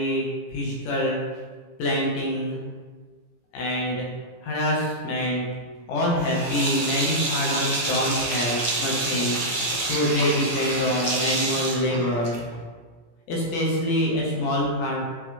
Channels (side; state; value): right; late; 17 ms